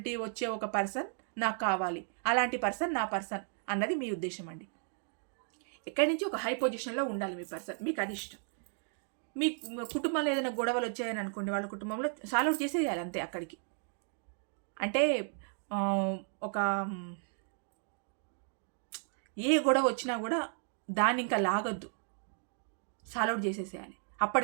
వచ్చే ఒక పర్సన్ నాకు కావాలి. అలాంటి పర్సన్ నా పర్సన్ అన్నది మీ ఉద్దేశం అండి. ఎక్కడి నుంచి ఒక హై పొజిషన్లో ఉండాలి మీ పర్సన్, మీకు అది ఇష్టం. మీ కుటుంబంలో ఏదైనా గొడవలు వచ్చాయని అనుకోండి, వాళ్ళ కుటుంబంలో సాల్వ్ అవుట్ చేసేయాలి అంతే అక్కడికి. అంటే ఒక ఏ గొడవ వచ్చినా కూడా దాన్ని ఇంకా లాగొద్దు, సాల్వ్ అవుట్ చేసేసేయాలి.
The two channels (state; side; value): silent; left; 55 dB below the other